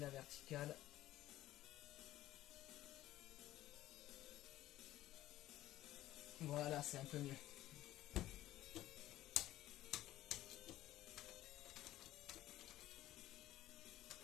verticale. Voilà, c'est un peu mieux.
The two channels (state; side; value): quieter; right; 14.7 dB